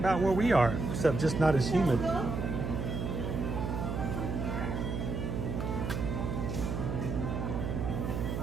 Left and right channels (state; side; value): noise; right; hum, 2 dB below the sound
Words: where we are, except just not as humid.